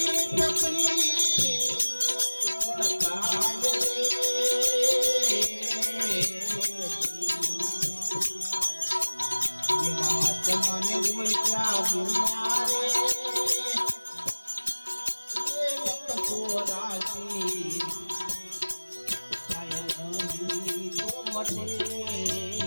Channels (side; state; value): both; inverted; correlation -1.00